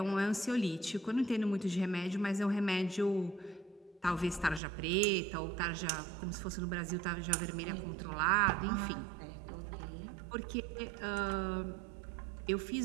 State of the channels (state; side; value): drops out; left; at 4.6 s